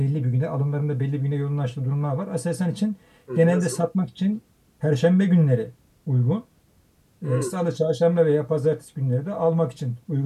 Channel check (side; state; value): both; identical; correlation 1.00